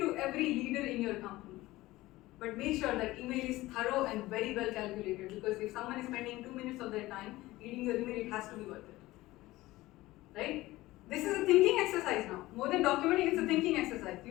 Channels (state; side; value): quieter; right; 18.2 dB